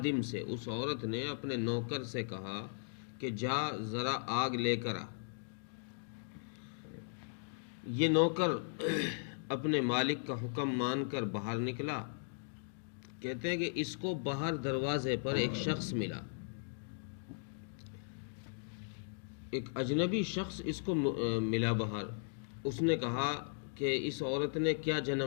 سے، اس عورت نے اپنے نوکر سے کہا کہ جا ذرا آگ لے کر آ. یہ نوکر اپنے مالک کا حکم مان کر باہر نکلا. کہتے ہیں کہ اس کو باہر دروازے پر ایک شخص ملا، ایک اجنبی شخص اس کو ملا باہر. اس نے کہا کہ اس عورت نے کیا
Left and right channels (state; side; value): silent; right; digital silence